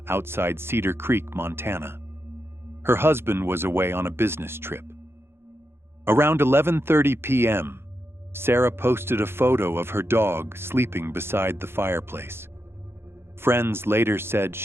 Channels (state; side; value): late; left; 0.11 ms